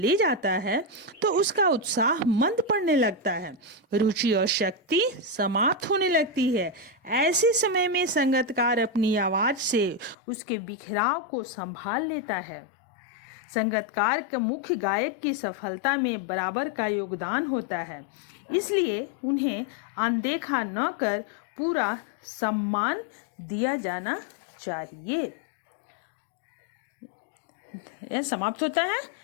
जाता है, तो उसका उत्साह मंद पड़ने लगता है, रुचि और शक्ति समाप्त होने लगती है। ऐसे समय में संगीतकार अपनी आवाज से उसके बिखराव को संभाल लेता है। संगीतकार के मुख्य गायक की सफलता में बराबर का योगदान होता है, इसलिए उन्हें अनदेखा न कर पूरा सम्मान दिया जाना चाहिए। यह समाप्त होता है।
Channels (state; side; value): drops out; right; at 10.2 s